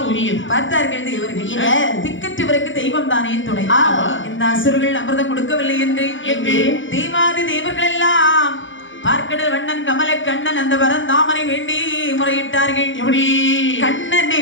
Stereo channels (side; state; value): right; late; 0.56 ms